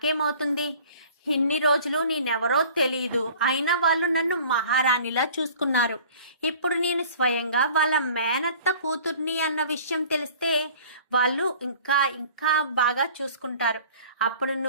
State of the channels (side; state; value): both; inverted; correlation -0.47